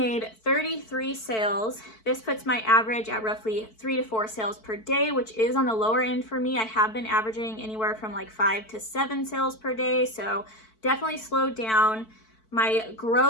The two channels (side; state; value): right; late; 4.5 ms